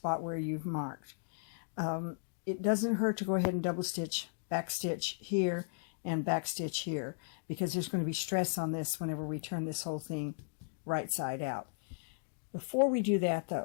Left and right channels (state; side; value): silent; right; digital silence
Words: where you've marked. It doesn't hurt to go ahead and double stitch, back stitch here, and back stitch here, because there's going to be stress on this whenever we turn this whole thing right side out. Before we do that